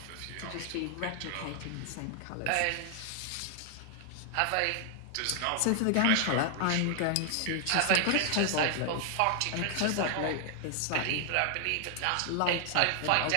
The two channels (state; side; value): different; both; correlation 0.00